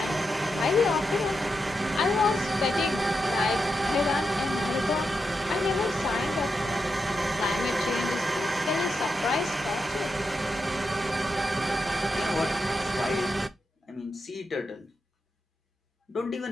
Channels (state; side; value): normal; both; correlation 0.86